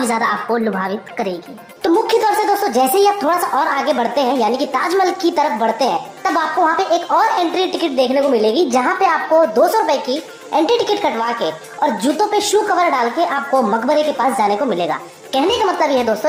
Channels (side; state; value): both; identical; correlation 1.00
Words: ज्यादा आपको लुभावित करेगी। तो मुख्य तौर से दोस्तों जैसे ही आप थोड़ा सा और आगे बढ़ते हैं यानी कि ताजमहल की तरफ बढ़ते हैं, तब आपको वहाँ पे एक और एंट्री टिकट देखने को मिलेगी, जहाँ पे आपको 200 रुपए की एंट्री टिकट कटवा के और जूतों पे शू कवर डाल के आपको मकबरे के पास जाने को मिलेगा। कहने का मतलब यह है